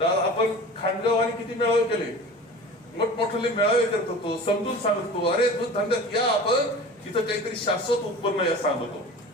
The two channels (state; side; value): normal; both; correlation 0.38